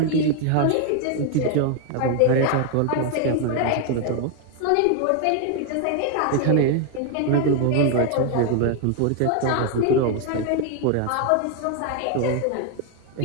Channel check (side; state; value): both; different; correlation 0.01